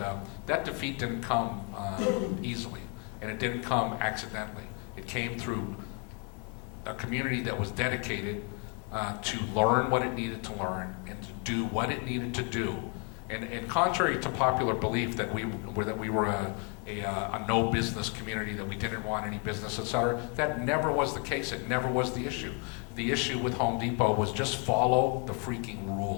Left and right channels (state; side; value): quieter; right; 36.7 dB